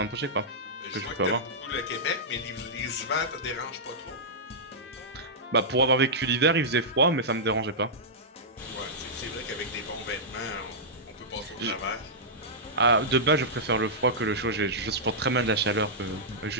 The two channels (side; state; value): both; normal; correlation -0.12